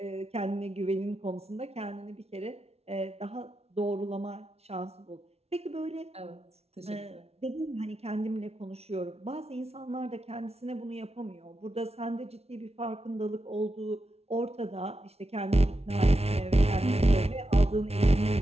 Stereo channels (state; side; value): late; left; 0.30 ms